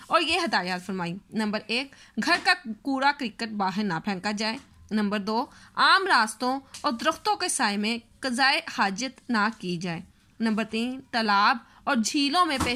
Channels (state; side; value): identical; both; correlation 1.00